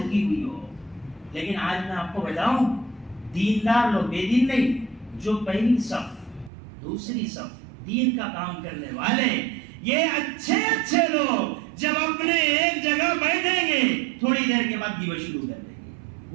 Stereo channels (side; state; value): left; drops out; at 6.5 s